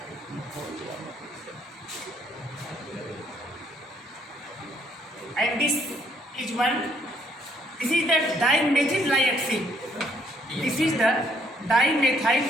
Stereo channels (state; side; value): normal; both; correlation 0.68